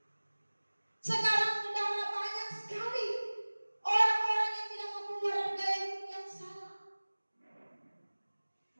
Sekarang saudara banyak sekali orang-orang yang tidak mau keluar dari gaya hidup yang salah.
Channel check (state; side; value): inverted; both; correlation -1.00